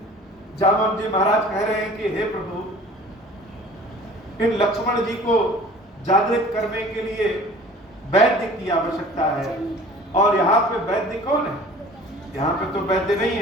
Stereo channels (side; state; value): both; normal; correlation 0.46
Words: जामवन जी महाराज कह रहे हैं कि हे प्रभु, इन लक्ष्मण जी को जागृत करने के लिए वैद्य की आवश्यकता है। और यहाँ पे वैद्य कौन है? यहाँ पे तो वैद्य नहीं